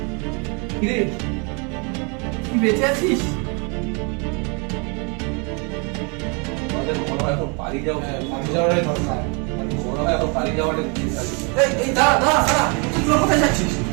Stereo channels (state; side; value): quieter; left; 33.8 dB